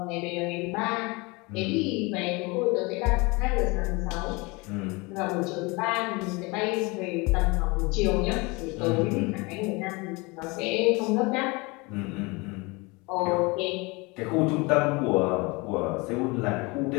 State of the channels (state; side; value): quieter; right; 26.2 dB